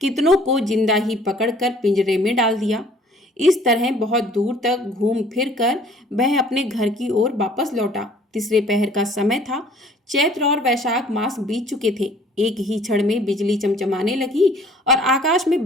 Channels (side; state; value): both; normal; correlation 0.55